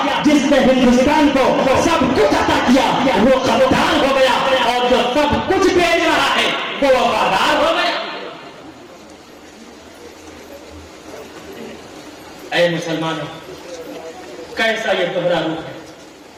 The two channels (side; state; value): both; identical; correlation 1.00